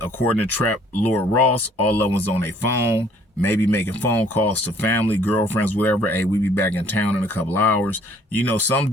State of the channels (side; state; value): both; normal; correlation 0.59